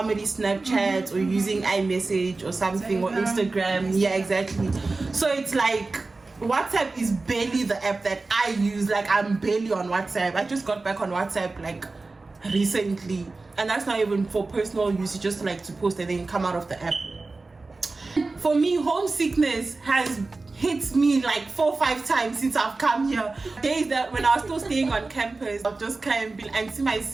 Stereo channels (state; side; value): quieter; left; 3.6 dB